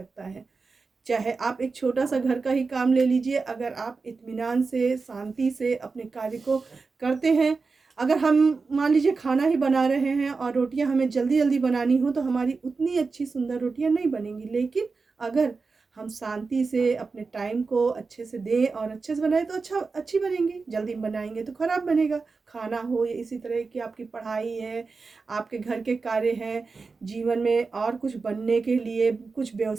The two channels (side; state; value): left; quieter; 4.4 dB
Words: है। चाहे आप एक छोटा सा घर का ही काम ले लीजिए, अगर आप इत्मीनान से, शांति से अपने कार्य को करते हैं, अगर हम मान लीजिए खाना ही बना रहे हैं और रोटियां हमें जल्दी जल्दी बनानी हो तो हमारी उतनी अच्छी सुंदर रोटियां नहीं बनेंगी। लेकिन अगर हम शांति से अपने टाइम को अच्छे से दें और अच्छे से बनाएं तो अच्छी बनेंगी। जल्दी बनाएंगे तो ख़राब बनेगा। खाना हो या इसी तरह की आपकी पढ़ाई है, आपके घर के कार्य हैं, जीवन में और कुछ बनने के लिए कुछ